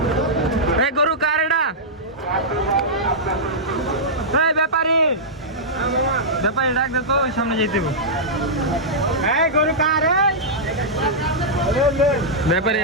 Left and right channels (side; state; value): both; normal; correlation -0.11